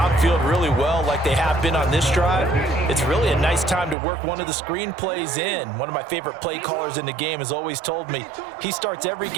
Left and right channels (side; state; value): left; drops out; at 4.0 s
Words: really well like they have been on this drive, it's really a nice time to work one of the screen plays in. One of my favorite play callers in the game has always told me he starts every